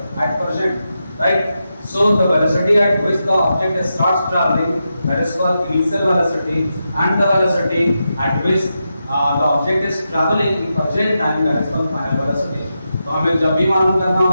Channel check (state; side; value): inverted; both; correlation -0.87